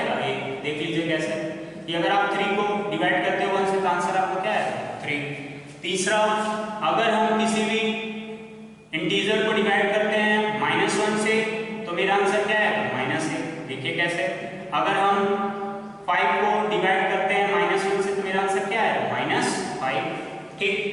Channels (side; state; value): both; identical; correlation 1.00